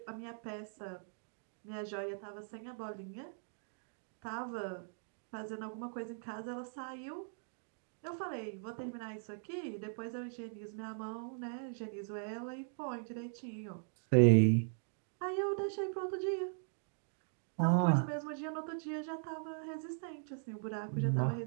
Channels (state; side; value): silent; left; digital silence